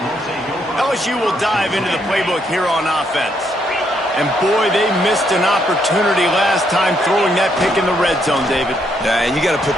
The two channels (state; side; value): normal; both; correlation 0.74